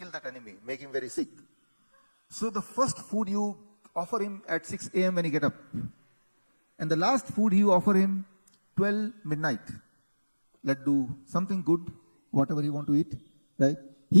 that enemy, make him very sick. So the first food you offer him at 6 a.m. when he get up. And the last food you offer him 12 midnight. Let's do something good, whatever you want to eat. Right?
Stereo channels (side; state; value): both; inverted; correlation -1.00